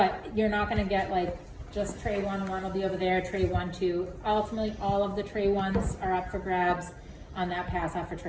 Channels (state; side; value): identical; both; correlation 1.00